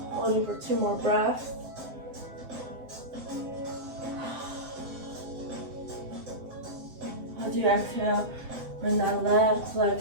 Holding for 2 more breaths. As you exhale, bring that left leg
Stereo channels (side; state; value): left; late; 7.7 ms